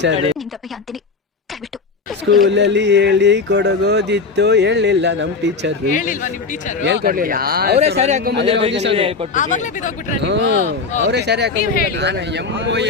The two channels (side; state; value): right; quieter; 4.4 dB